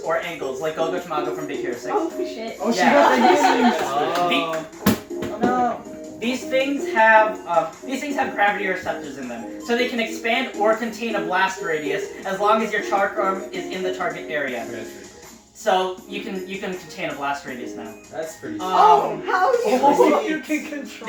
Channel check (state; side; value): identical; both; correlation 1.00